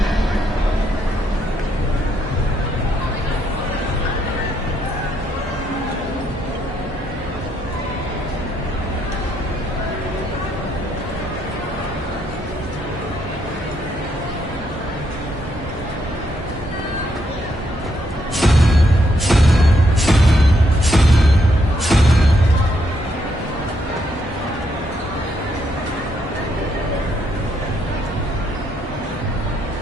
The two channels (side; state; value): both; normal; correlation 0.76